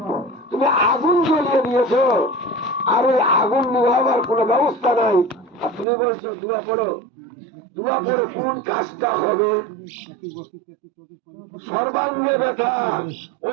তুমি আগুন জ্বলিয়ে দিয়েছো, আর ওই আগুন নিভাবার কোন ব্যবস্থা নাই, আর তুমি বলছো দোয়া করো। দোয়া করে কোন কাজটা হবে? সর্বাঙ্গে ব্যথা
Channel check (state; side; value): drops out; left; at 5.9 s